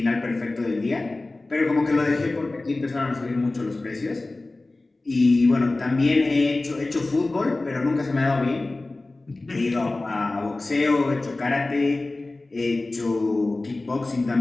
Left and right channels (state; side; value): quieter; right; 3.0 dB